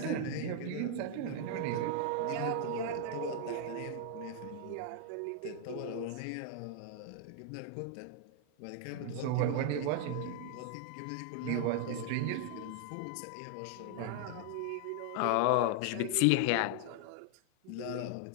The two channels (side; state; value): both; different; correlation 0.00